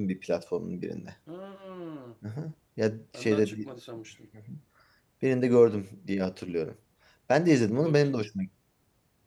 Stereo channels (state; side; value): identical; both; correlation 1.00